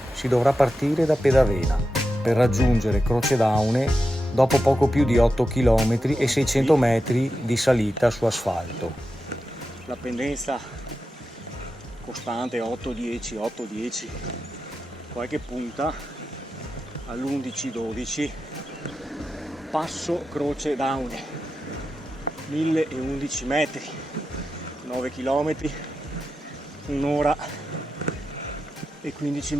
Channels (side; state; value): both; normal; correlation 0.90